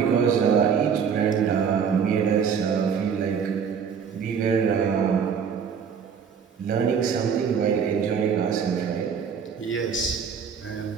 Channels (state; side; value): quieter; left; 6.9 dB